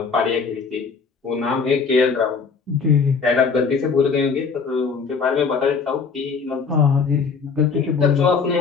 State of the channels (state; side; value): quieter; right; 5.3 dB